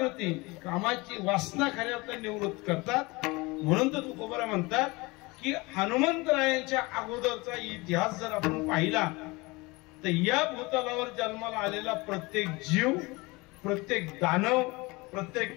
कामाची वासना खऱ्या अर्थाने निवृत्त करतात. म्हणून तर तुकोबरा म्हणतात की हनुमंतरायांच्या अगोदरचा इतिहास जर आपण पाहिला तर या भूतलावर जन्माला आलेला प्रत्येक जीव, प्रत्येक दानव,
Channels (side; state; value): right; quieter; 24.2 dB